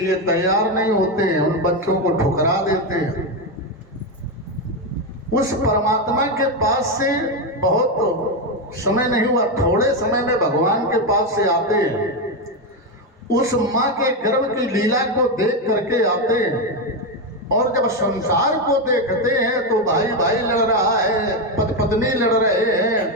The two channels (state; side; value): normal; both; correlation 0.09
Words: तैयार नहीं होते हैं, उन बच्चों को ठुकरा देते हैं। उस परमात्मा के पास से बहुत समय नहीं हुआ, थोड़े समय में भगवान के पास से आते हैं, उस माँ के गर्भ की लीला को देख करके आते हैं, और जब संसार को देखते हैं तो भाई भाई लड़ रहा है, पत्नी लड़ रहे हैं,